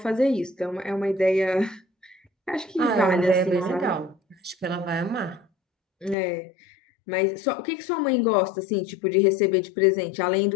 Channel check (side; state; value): right; drops out; at 6.2 s